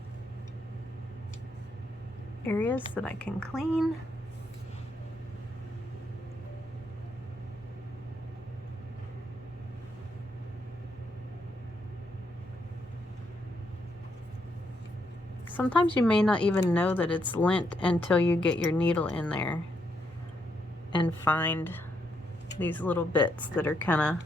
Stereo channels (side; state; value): both; normal; correlation 0.78